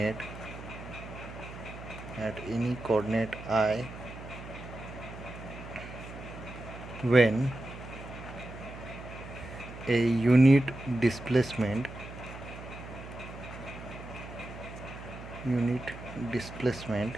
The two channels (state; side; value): noise; right; hum, 12 dB below the sound